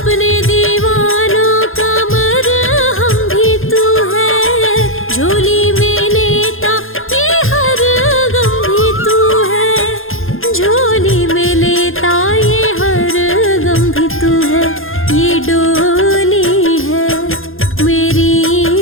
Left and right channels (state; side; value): late; right; 0.60 ms